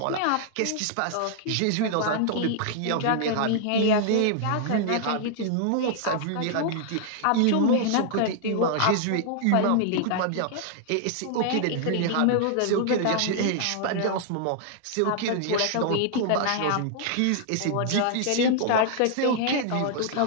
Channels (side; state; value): both; different; correlation -0.01